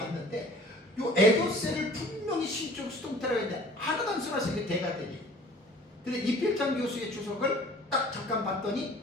요 에도세를 분명히 신적 수동태라고 했는데 하나도 안 써놨어요. 이게 대가들이. 근데 이필장 교수의 주석을 딱 잠깐 봤더니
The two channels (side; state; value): both; normal; correlation 0.49